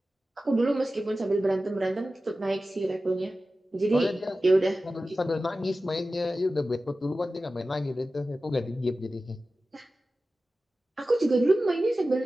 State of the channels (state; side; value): normal; both; correlation 0.95